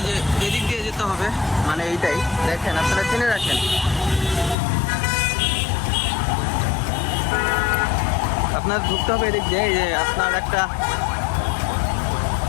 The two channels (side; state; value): right; drops out; at 4.5 s